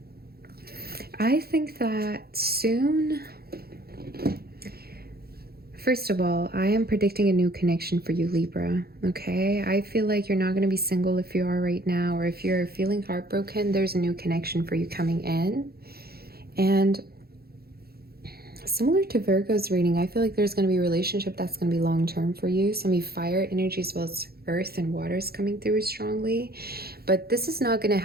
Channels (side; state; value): left; late; 0.45 ms